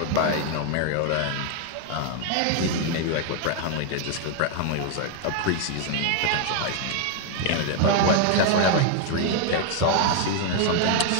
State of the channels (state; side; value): different; both; correlation 0.00